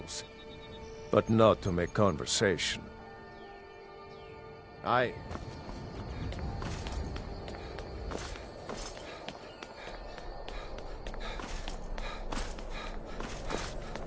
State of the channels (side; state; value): both; identical; correlation 1.00